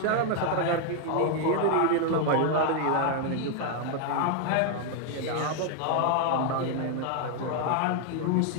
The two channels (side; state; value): both; different; correlation 0.01